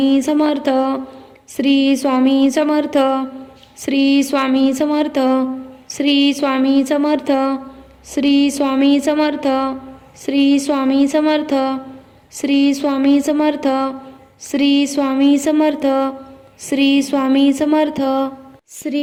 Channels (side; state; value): both; identical; correlation 1.00